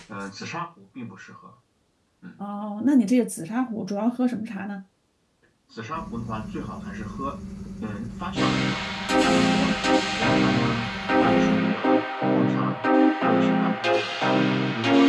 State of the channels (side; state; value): both; identical; correlation 1.00